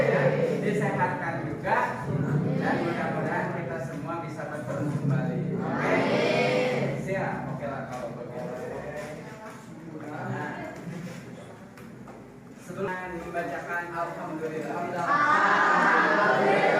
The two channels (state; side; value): identical; both; correlation 1.00